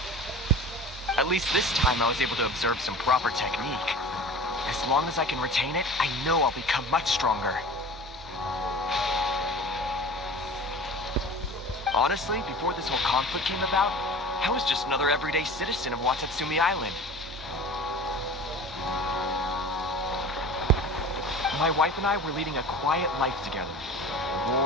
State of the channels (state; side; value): normal; both; correlation 0.38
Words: At least this time I was able to observe some proper technique. As long as I can retain it, I know I'll become much stronger. Honestly, before this whole conflict came about, I was just another everyday citizen of Watatsumi Island. My wife and I were leading a quiet life together.